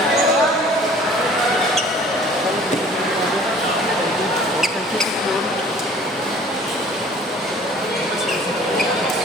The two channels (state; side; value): normal; both; correlation 0.51